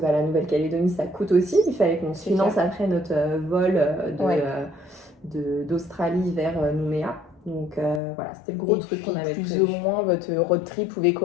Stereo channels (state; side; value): drops out; right; at 8.0 s